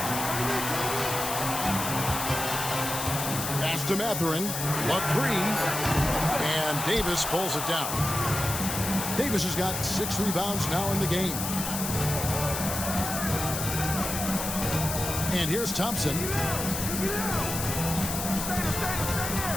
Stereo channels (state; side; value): noise; left; hiss, 4 dB below the sound